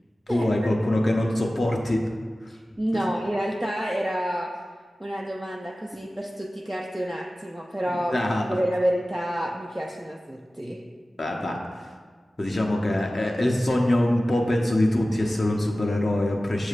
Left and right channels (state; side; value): normal; both; correlation 0.96